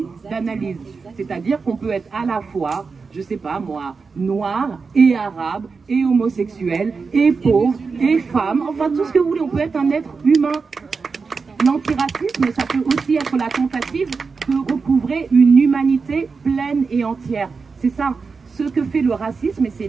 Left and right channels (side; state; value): left; quieter; 4.8 dB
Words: d'analyse. C'est-à-dire qu'on peut être à la fois, je sais pas moi, noir et arabe et homosexuel et pauvre et femme, enfin tout ce que vous voulez, on peut être un être humain. L'antiracisme, ça peut aussi être la tentative de recouvrer une humanité pleine et entière. C'est ça. Ce que fait le racisme, et c'est